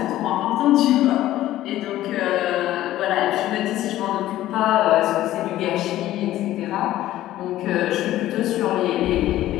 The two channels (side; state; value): right; quieter; 14.3 dB